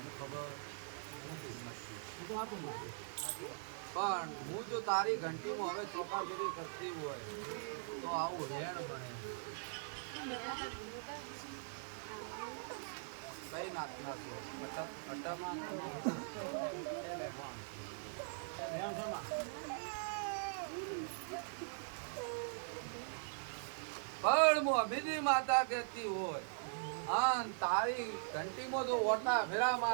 ખબર પણ હું જો તારી ઘંટીમાં હવે ચોકાગીરી કરતી હોય તો આવું રેણ બને કઈ નાખના છો પણ મોહમ્મદી માતા કહેતી હોય હા તારી ઘંટીમાં જો ઓટા ફેરા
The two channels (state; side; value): silent; left; digital silence